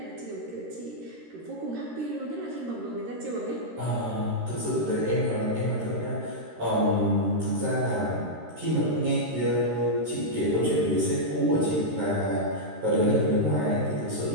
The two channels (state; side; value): late; left; 13 ms